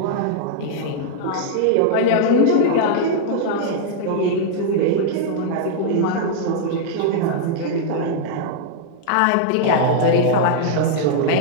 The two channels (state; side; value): different; both; correlation -0.01